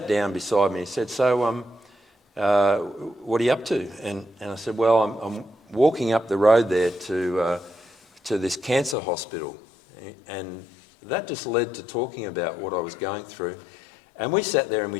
down beside me. He said, "So, what are you up to?" And I said, "Well, I'm walking up the road there to this cancer hospital," and that just led to talking about what I was going through. And we sat there and we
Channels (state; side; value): drops out; right; at 9.0 s